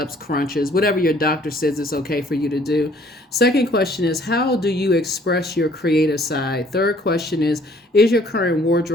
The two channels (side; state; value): both; normal; correlation 0.59